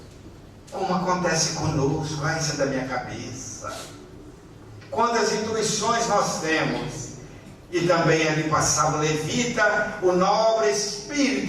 Como acontece conosco, isso é da minha cabeça. Quantas intuições nós temos. E também ali passava o levita, o nobre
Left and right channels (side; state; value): both; identical; correlation 1.00